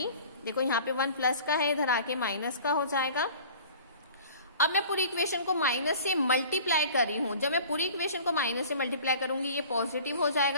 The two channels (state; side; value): inverted; both; correlation -0.45